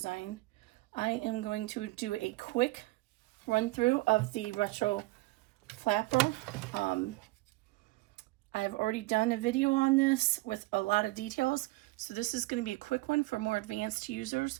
I am going to do a quick run through of the Retro Flapper. I've already done a video on this with a lot of details, so this is going to be a quick one for more advanced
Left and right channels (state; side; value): quieter; left; 21.3 dB